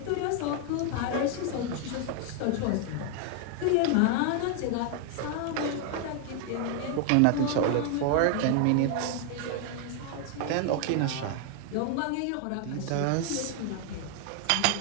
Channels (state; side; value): different; both; correlation 0.00